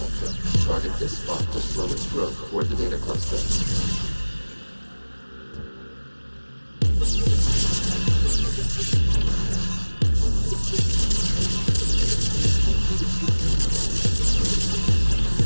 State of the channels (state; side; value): inverted; both; correlation -1.00